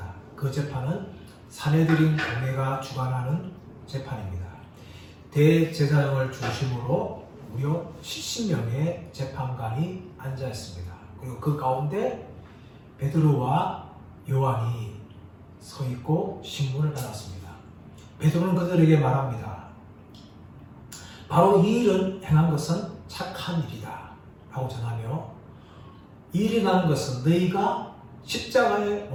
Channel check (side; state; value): both; identical; correlation 1.00